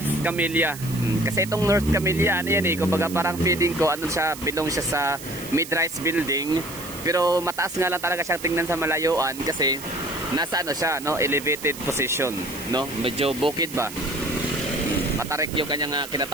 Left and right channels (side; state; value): right; noise; hiss, 13 dB below the sound